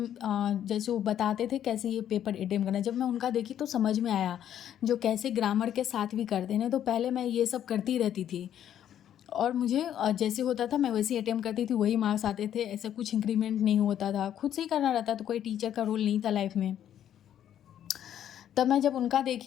जैसे वो बताते थे कैसे ये पेपर अटेम्प्ट करना है, जब मैं उनका देखी तो समझ में आया जो कैसे ग्रामर के साथ भी करते हैं। तो पहले मैं ये सब करती रहती थी और मुझे जैसे होता था मैं वैसे ही अटेम्प्ट करती थी, वही मार्क्स आते थे, ऐसा कुछ इंक्रीमेंट नहीं होता था, खुद से ही करना रहता, तो कोई टीचर का रोल नहीं था लाइफ में। तब मैं जब उनका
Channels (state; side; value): quieter; right; 10.4 dB